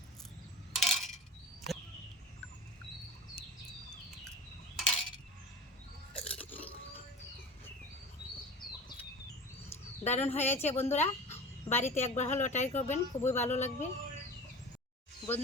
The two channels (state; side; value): normal; both; correlation 0.35